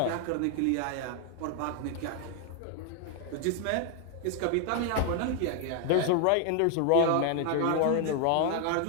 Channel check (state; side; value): different; both; correlation 0.00